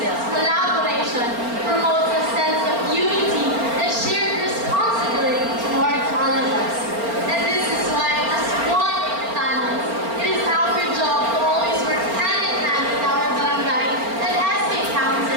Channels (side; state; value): left; late; 4.4 ms